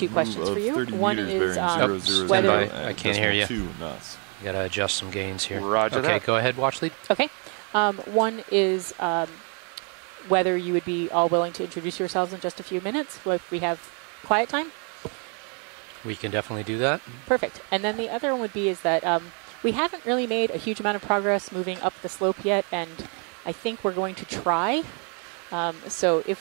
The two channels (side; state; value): left; quieter; 37.3 dB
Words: move questions of for you. 30 One meters is, bearing 0.00 whether- I can't hear you. 2 knots. You gotta adjust some gains here. Roger okay, that. go ahead. Watch lead. Okay. One is whether you would be all willing to introduce yourselves in just a few minutes if we have quiet time. We can definitely do that. Perfect. And then the other one would be is that we haven't really made a huge amount of progress moving up the slope yet, and I think we're going to try. So